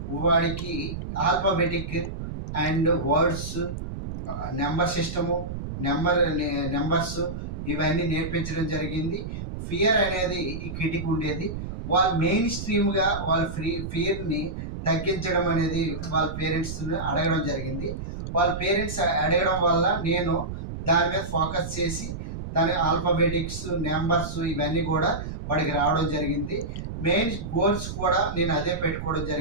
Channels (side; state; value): right; noise; rumble, 7 dB below the sound